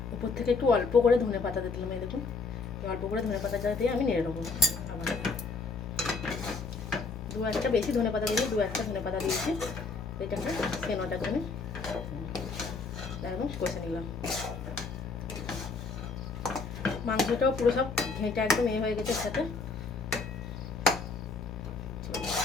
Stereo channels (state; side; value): quieter; right; 4.3 dB